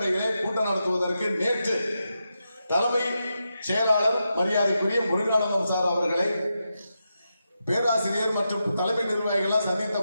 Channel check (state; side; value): inverted; both; correlation -0.87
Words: கூட்டம் நடத்துவதற்கு நேற்று தலைமை செயலாளர் மரியாதைக்குரிய முருகானந்தம் சார் அவர்களை பேராசிரியர் மற்றும் தலைமை நிர்வாகிகள் சந்தித்த